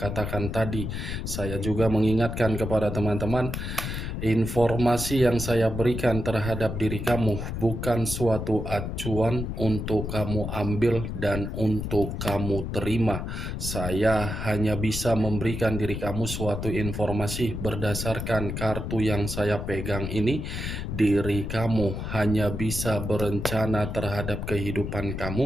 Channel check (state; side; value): noise; left; rumble, 5 dB below the sound